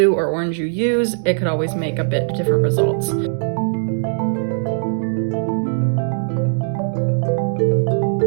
or orange you use, it could always make a bit different results.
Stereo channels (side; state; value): left; silent; digital silence